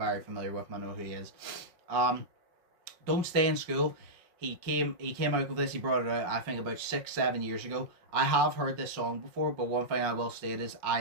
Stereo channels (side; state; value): left; late; 5.4 ms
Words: familiar with him. I know who he is. Don't Stay in School. He came out with this. He brought it out, I think, about 6-7 years ago. I have heard this song before, but one thing I will state is